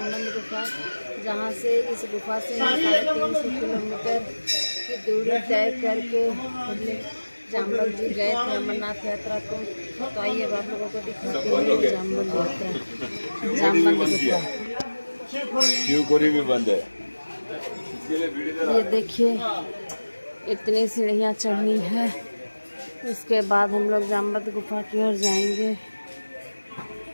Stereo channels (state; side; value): inverted; both; correlation -1.00